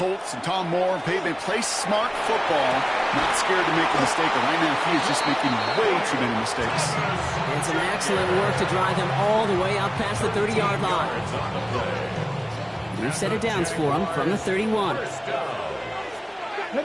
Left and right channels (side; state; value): both; identical; correlation 1.00